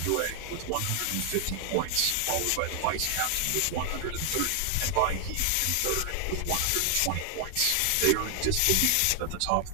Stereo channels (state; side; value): different; both; correlation 0.00